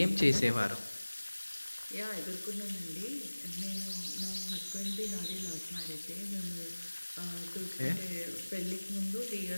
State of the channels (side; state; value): both; inverted; correlation -1.00